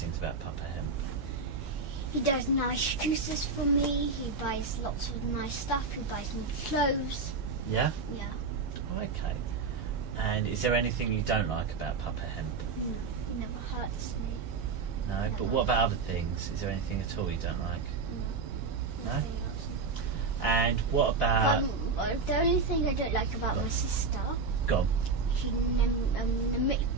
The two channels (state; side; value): quieter; left; 4.5 dB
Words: about Papa Hemp. He does nice juices for me. He buys lots of nice stuff. He buys me clothes. Yeah? Yeah. Okay. And is there anything you don't like about Papa Hemp? No, he never hurts me. No, Never. but what about other things? Is there anything at all you don't like? No. No? Nothing else. And what about... But the only thing I don't like about my sister, Go on. she